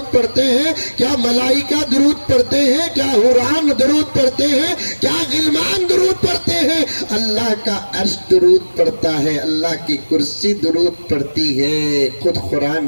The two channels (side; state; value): both; inverted; correlation -1.00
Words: پڑھتے ہیں، کیا ملائکہ درود پڑھتے ہیں، کیا حوران درود پڑھتے ہیں، کیا غلمان درود پڑھتے ہیں۔ اللہ کا عرش درود پڑھتا ہے، اللہ کی کرسی درود پڑھتی ہے، خود قرآن